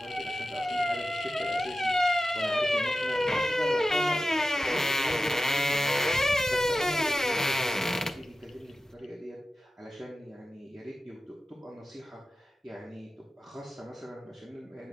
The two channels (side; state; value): both; normal; correlation 0.94